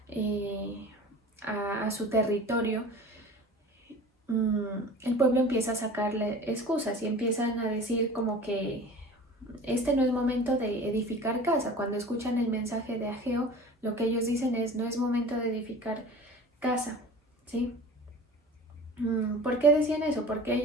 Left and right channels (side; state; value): both; normal; correlation 0.39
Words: a su territorio, el pueblo empieza a sacarle excusas y empiezan a decir como que este no es momento de edificar casa. Cuando escuchan el mensaje de Ageo, lo que ellos dicen es: no es momento de edificar casa, ¿sí? ¿Por qué decían eso? Porque